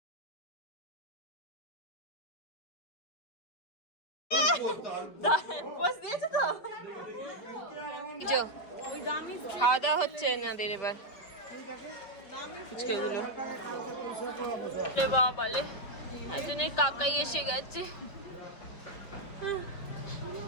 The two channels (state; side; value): late; right; 5.0 ms